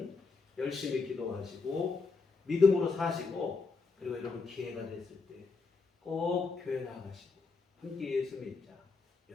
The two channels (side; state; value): right; quieter; 4.3 dB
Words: 열심히 기도하시고 믿음으로 사시고 그리고 여러분 기회가 됐을 때 꼭 교회 나가시고 함께 예수 믿자